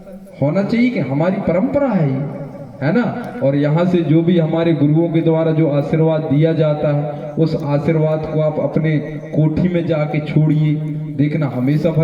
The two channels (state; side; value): identical; both; correlation 1.00